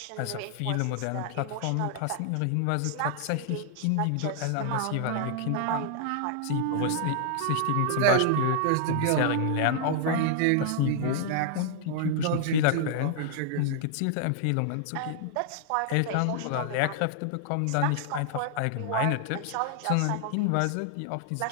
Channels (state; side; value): different; both; correlation -0.01